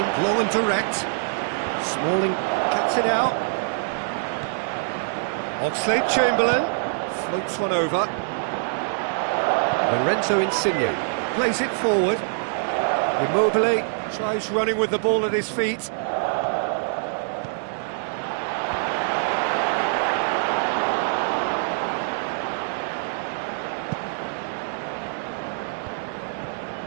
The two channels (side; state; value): left; silent; digital silence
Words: long and direct. Smalling cuts it out. Oxlade-Chamberlain floats one over. Lorenzo Insigne plays it forward. Immobile tries running with the ball at his feet.